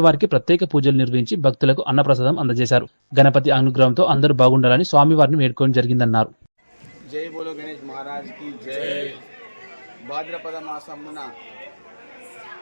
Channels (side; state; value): both; inverted; correlation -1.00